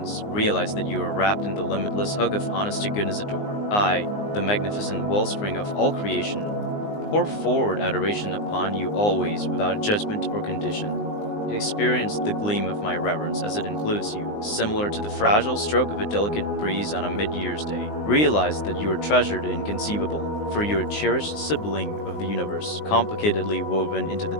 realize that you are wrapped in the limitless hug of honest to goodness adore. I, the magnificent wellspring of all creation, pour forward adoration upon you always without judgment or condition. Experience the gleam of my reverence as it includes you, similar to the fragile stroke of a delicate breeze on a mid-year's day. Realize that you are treasured and inconceivable, for you are a cherished sibling of the universe, complicatedly woven into the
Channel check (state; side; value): late; right; 19 ms